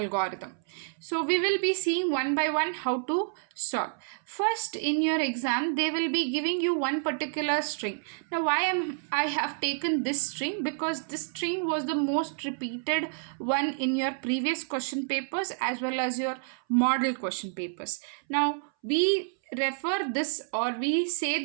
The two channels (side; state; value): left; silent; 59 dB below the other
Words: So we will be seeing one by one how to solve. First, in your exam they will be giving you one particular string. Now why I have taken this string? Because this string was the most repeated one in your previous question papers as well as your model question papers. Now we refer this, or we